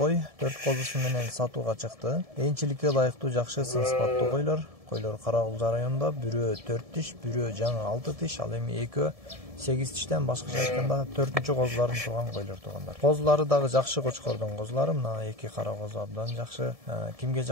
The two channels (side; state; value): left; late; 1.7 ms